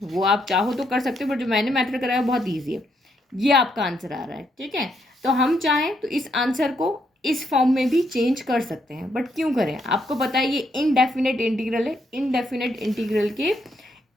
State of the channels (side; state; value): both; normal; correlation 0.76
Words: वो आप चाहो तो कर सकते हो, बट जो मैंने मेथड कराया बहुत ईजी है। ये आपका आंसर आ रहा है। ठीक है, तो हम चाहें तो इस आंसर को इस फॉर्म में भी चेंज कर सकते हैं, बट क्यों करें? आपको पता है ये इनडेफिनेट इंटीग्रल है, इनडेफिनेट इंटीग्रल के